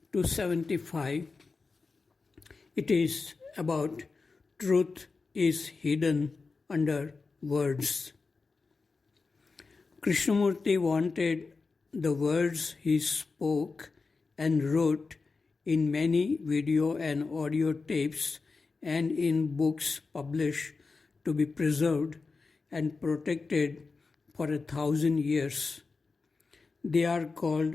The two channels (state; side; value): quieter; right; 4.3 dB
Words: 275. It is about truth is hidden under words. Krishnamurti wanted the words he spoke and wrote in many video and audio tapes and in books published to be preserved and protected for 1,000 years. They are